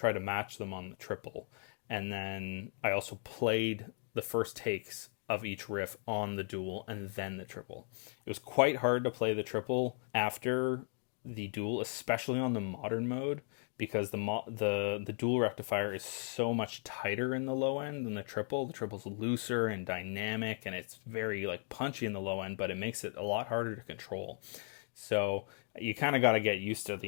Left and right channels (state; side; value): silent; right; 53 dB below the other